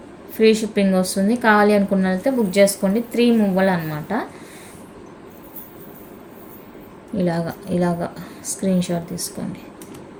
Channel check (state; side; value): identical; both; correlation 1.00